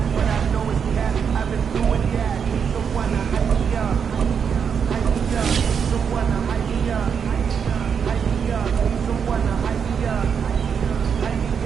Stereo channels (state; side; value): quieter; left; 6.9 dB